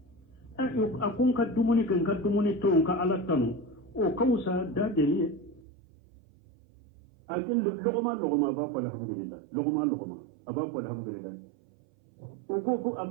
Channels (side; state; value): left; drops out; at 5.6 s